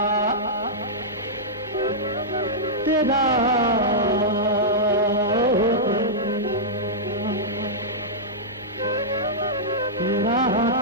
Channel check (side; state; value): both; normal; correlation -0.11